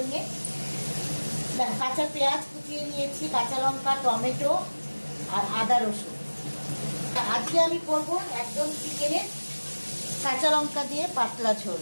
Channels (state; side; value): inverted; both; correlation -1.00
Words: দেখো কাঁচা পেঁয়াজ কুচিয়ে নিয়েছি, কাঁচা লঙ্কা, টমেটো আর আদা রসুন। আজকে আমি করবো একদম চিকেনের কাঁচা লঙ্কা দিয়ে পাতলা ঝোল।